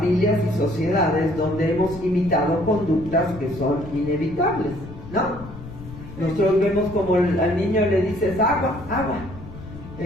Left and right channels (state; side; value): noise; left; rumble, 14 dB below the sound